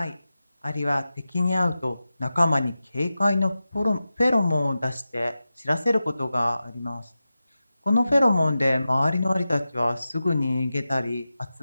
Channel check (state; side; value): inverted; both; correlation -0.93